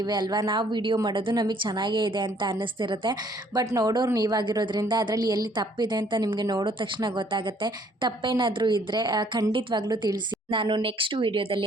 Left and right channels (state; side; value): normal; both; correlation 0.62